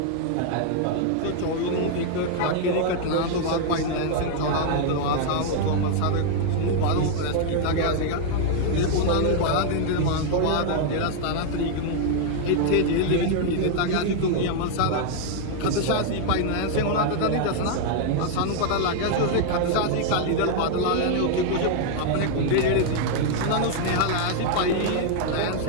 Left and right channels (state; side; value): different; both; correlation 0.00